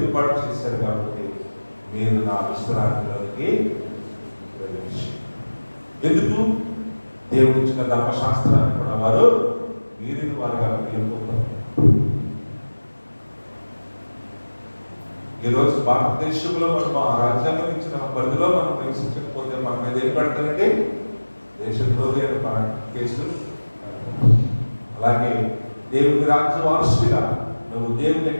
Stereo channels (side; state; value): both; inverted; correlation -1.00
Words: చేశారు కాబట్టి మీరు నా విశ్రాంతిలోకి ప్రవేశించారు. ఎందుకు? దేవుడు ఇచ్చిన ధర్మశాస్త్రాన్ని కూడా వారు వీరిని వారుగా వెళ్ళిపోతారు. ఈరోజు భారతదేశంలో మనం ఆ రాజ్యాంగం ఇచ్చిన పరిధిలో మనం నివసించకపోతే మన మీద ఏం పెడతారండి? దేశద్రోహి అని కేసులు. అలాగే దేవుని రాజ్య వారసుడిగా నువ్వు దేవుని